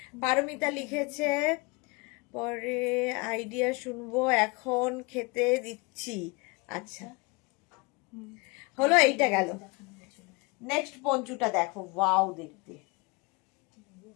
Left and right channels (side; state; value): right; quieter; 27.3 dB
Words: পারমিতা লিখেছে পরে আইডিয়া শুনবো, এখন খেতে দিচ্ছি। আচ্ছা, হলো, এইটা গেল। নেক্সট পঞ্চুটা দেখো, ওয়াও দেখতে।